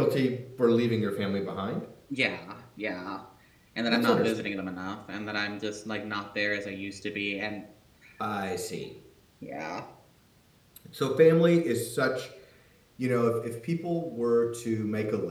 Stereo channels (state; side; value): identical; both; correlation 1.00